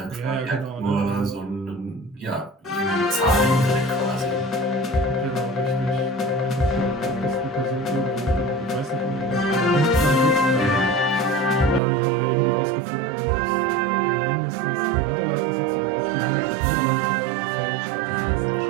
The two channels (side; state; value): left; drops out; at 11.8 s